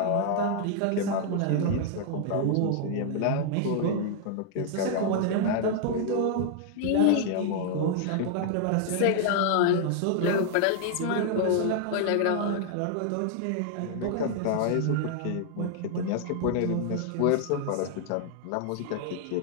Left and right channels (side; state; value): both; different; correlation 0.00